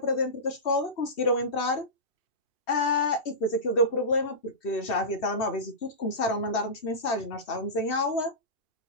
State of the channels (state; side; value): late; right; 2.7 ms